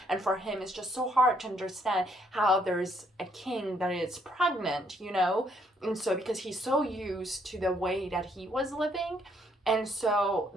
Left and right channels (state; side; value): normal; both; correlation 0.70